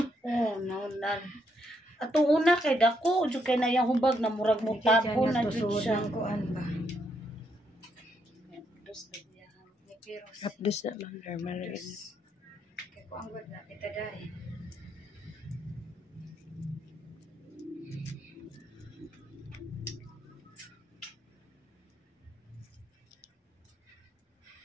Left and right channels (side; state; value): both; normal; correlation 0.76